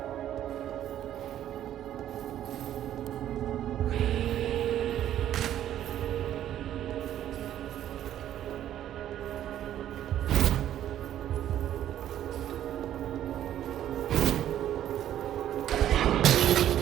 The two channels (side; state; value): left; quieter; 11.5 dB